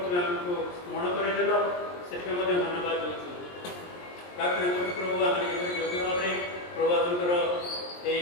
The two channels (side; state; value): right; late; 23 ms